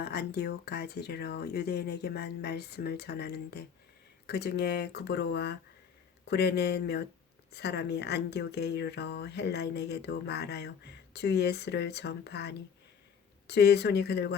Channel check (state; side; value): quieter; right; 7.0 dB